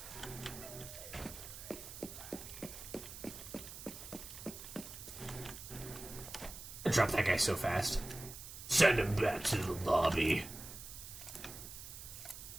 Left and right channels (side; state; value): right; noise; hiss, 11 dB below the sound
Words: I dropped that guy so fast. Send him back to the lobby.